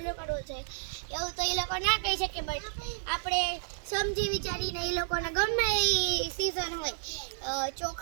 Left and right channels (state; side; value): silent; left; 57 dB below the other